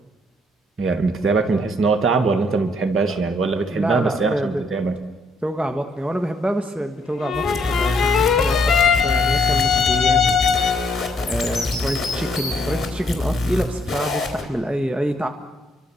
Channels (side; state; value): both; normal; correlation 0.69